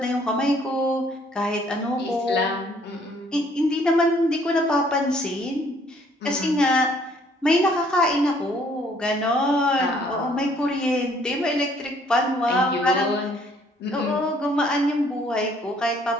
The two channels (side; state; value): both; normal; correlation 0.62